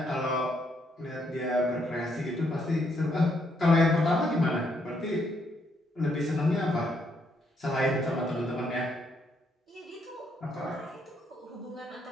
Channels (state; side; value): normal; both; correlation 0.74